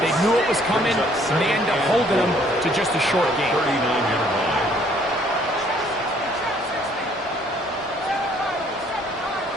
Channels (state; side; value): normal; both; correlation 0.62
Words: They knew it was coming, and they end up holding them to just a short game. 39-yard line.